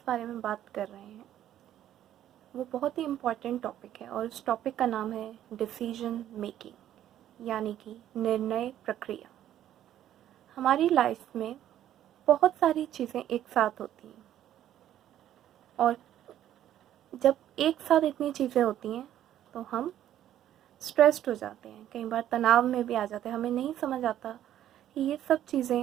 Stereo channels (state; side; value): quieter; left; 11.7 dB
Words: बारे में बात कर रहे हैं वो बहुत ही इम्पॉर्टेंट टॉपिक है और उस टॉपिक का नाम है डिसीजन मेकिंग, यानी कि निर्णय प्रक्रिया। हमारी लाइफ में बहुत सारी चीज़ें एक साथ होती हैं और जब एक साथ इतनी चीज़ें होती हैं तो हम स्ट्रेस्ड हो जाते हैं, कई बार तनाव में भी आ जाते हैं। हमें नहीं समझ आता कि ये सब